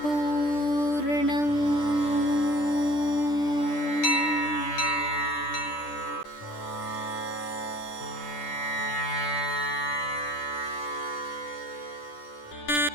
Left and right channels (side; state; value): right; late; 10 ms